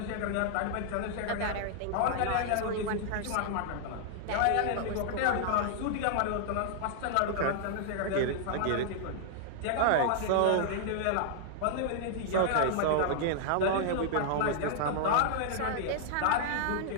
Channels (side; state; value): both; different; correlation -0.01